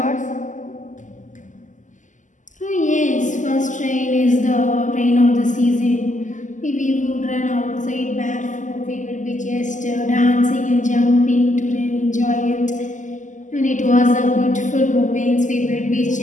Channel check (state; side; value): late; right; 0.37 ms